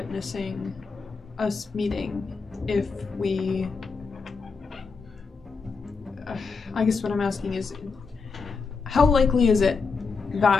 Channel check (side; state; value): right; quieter; 4.8 dB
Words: us meeting if we... I guess what I'm asking is, how likely is it